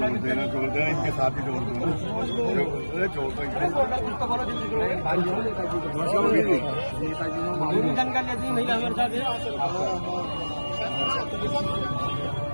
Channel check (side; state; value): both; inverted; correlation -1.00